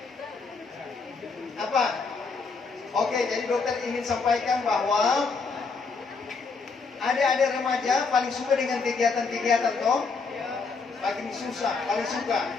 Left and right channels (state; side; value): quieter; right; 4.6 dB